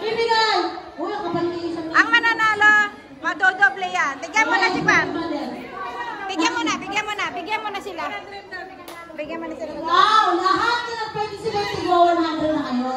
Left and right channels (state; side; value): identical; both; correlation 1.00